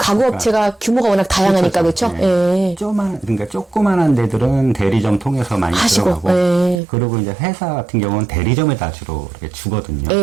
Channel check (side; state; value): left; drops out; at 6.8 s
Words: 규모가 워낙 다양하니까 그렇죠? 네. 예. 그러니까 조그만한 데들은 대리점 통해서 많이 하시고, 들어가고. 예. 그리고 이제 회사 같은 경우는 대리점에다 주로 이렇게 주거든요.